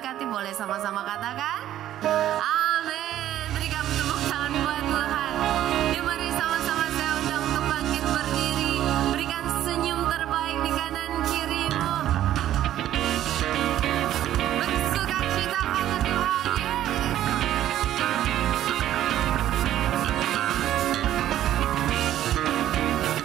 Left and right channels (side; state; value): left; quieter; 12.4 dB